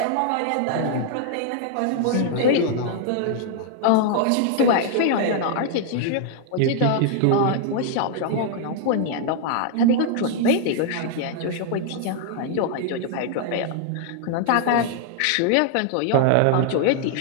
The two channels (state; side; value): different; both; correlation -0.01